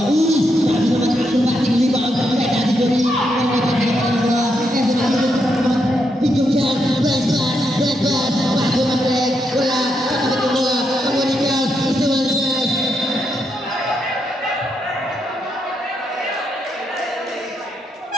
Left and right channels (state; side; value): normal; both; correlation 0.80